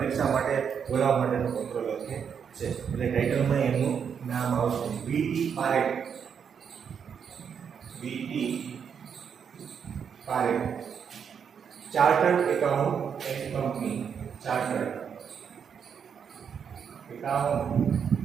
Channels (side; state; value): left; quieter; 7.2 dB